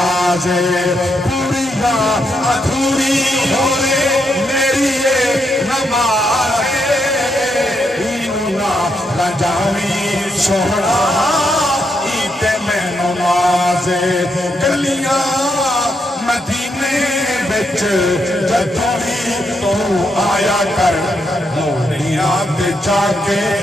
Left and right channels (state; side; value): normal; both; correlation 0.80